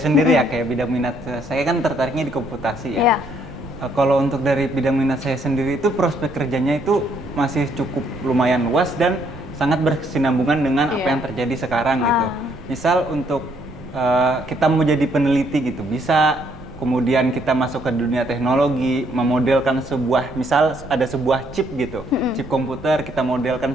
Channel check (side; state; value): right; noise; rumble, 18 dB below the sound